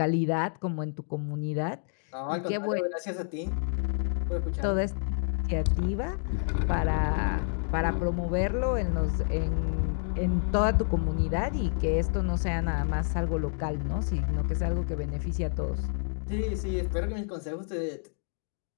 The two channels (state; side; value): silent; right; 59 dB below the other